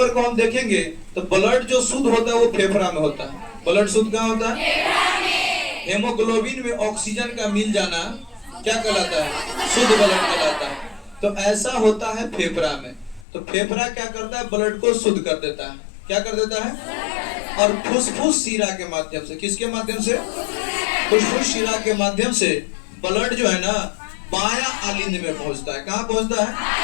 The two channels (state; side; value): drops out; right; at 13.2 s